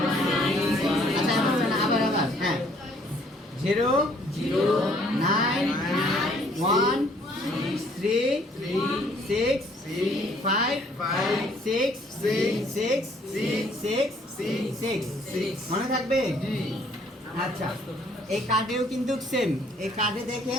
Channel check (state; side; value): normal; both; correlation 0.62